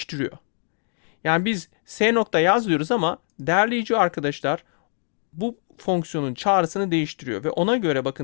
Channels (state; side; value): silent; right; 59 dB below the other